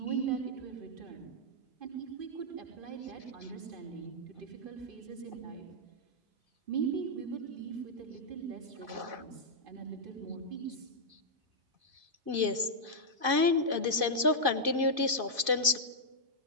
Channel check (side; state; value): left; late; 2.5 ms